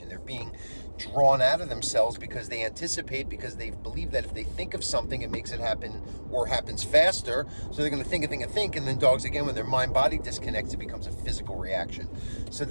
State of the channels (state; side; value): inverted; both; correlation -1.00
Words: They're being drawn out of themselves because they anticipate, because they believe that if they think of something, it makes it happen, or happens faster. So they're going to think, and then dogs, again, when their mind-body disconnects, it becomes a physical reaction. So